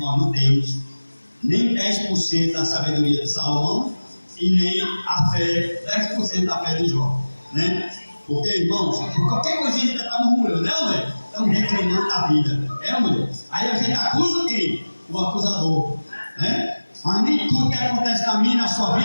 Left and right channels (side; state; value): both; inverted; correlation -1.00